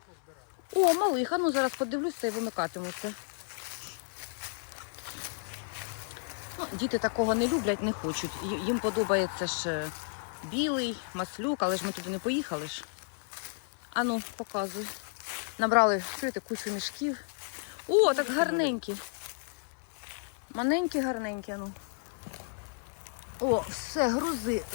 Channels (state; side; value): silent; right; 56 dB below the other